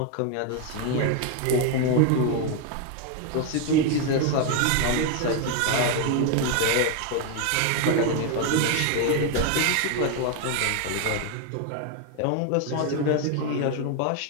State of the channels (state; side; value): different; both; correlation 0.01